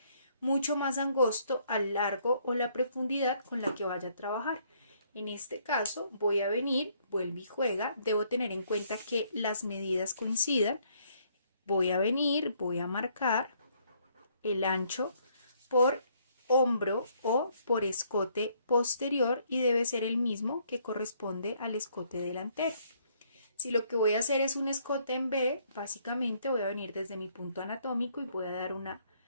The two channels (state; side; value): inverted; both; correlation -0.67